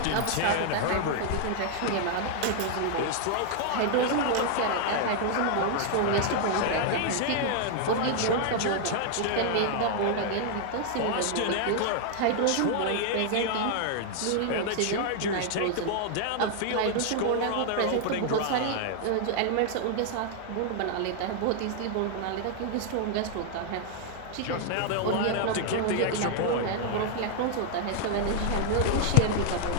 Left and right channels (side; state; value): both; different; correlation 0.00